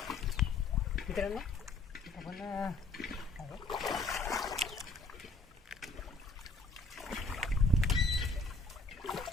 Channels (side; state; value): right; quieter; 3.3 dB